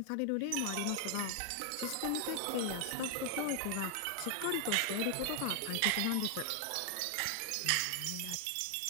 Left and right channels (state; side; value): different; both; correlation 0.00